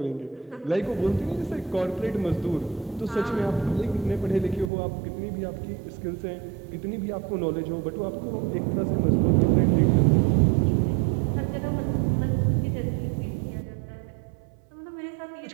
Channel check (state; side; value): drops out; left; at 4.7 s